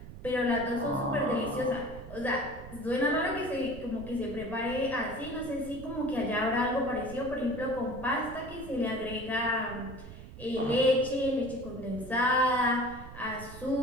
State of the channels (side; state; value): right; noise; rumble, 14 dB below the sound